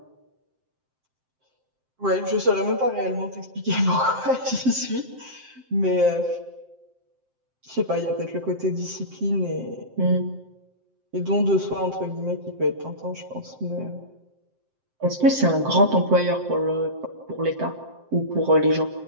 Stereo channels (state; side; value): late; left; 7.7 ms